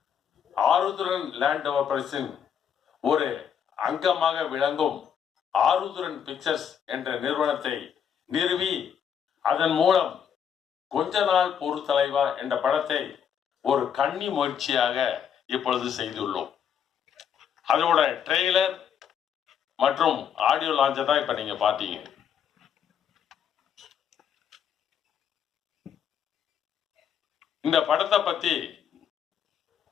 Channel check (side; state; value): right; quieter; 8.2 dB